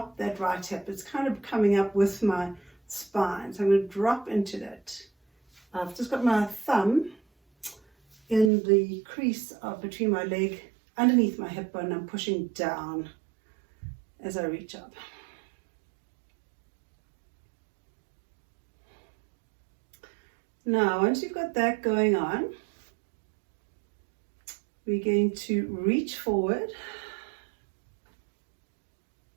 that right hip. It's kind of coming up with my spine. So I'm going to drop into that. I've just got my thumb in the crease between my leg, underneath my hip bone. I'm pushing down as I reach up. Now, once you've got that going on, we're going to reach forward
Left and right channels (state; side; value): drops out; left; at 8.5 s